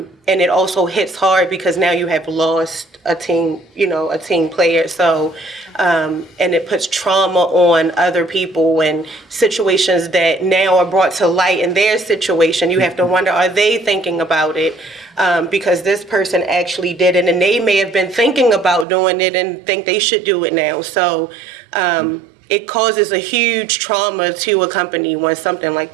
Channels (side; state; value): left; drops out; at 18.9 s